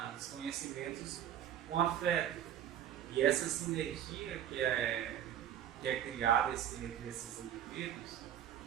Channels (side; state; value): left; quieter; 10.4 dB